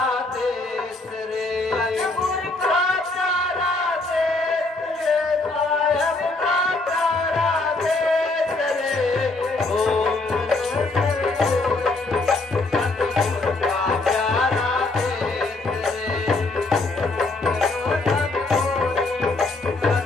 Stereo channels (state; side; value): quieter; right; 3.2 dB